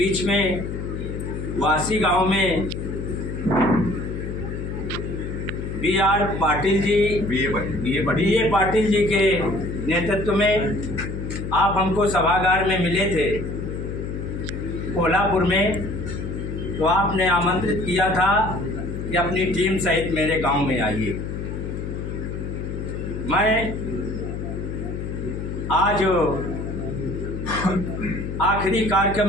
में वासी गांव में बी.आर. पाटिल जी, बी.ए. पाटिल जी के नेतृत्व में आप हमको सभागार में मिले थे कोल्हापुर में, तो आपने आमंत्रित किया था कि अपनी टीम सहित मेरे गांव में आइए। मैं आज आखिरी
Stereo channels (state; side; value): noise; left; hum, 5 dB below the sound